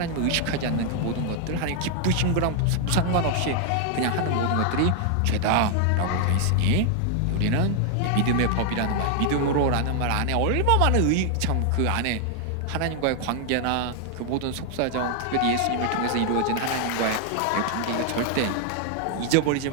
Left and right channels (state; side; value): different; both; correlation 0.00